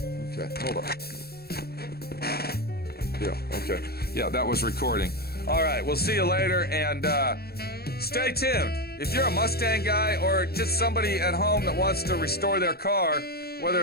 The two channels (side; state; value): right; late; 0.46 ms